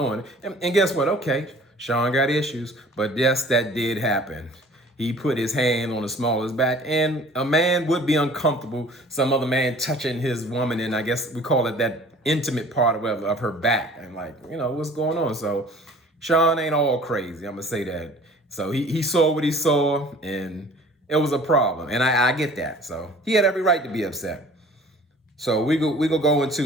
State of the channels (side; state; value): both; normal; correlation 0.48